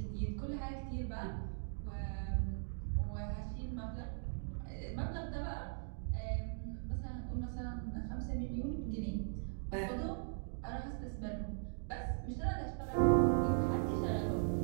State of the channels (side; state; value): left; silent; digital silence